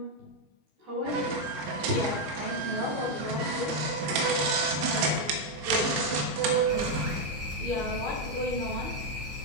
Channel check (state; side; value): late; left; 14 ms